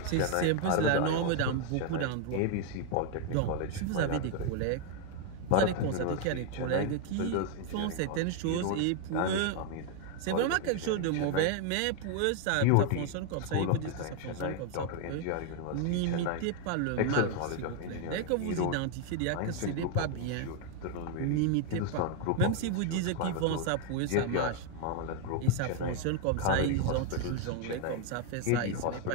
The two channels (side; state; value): both; different; correlation 0.00